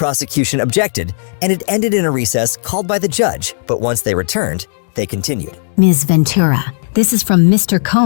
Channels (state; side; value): silent; right; digital silence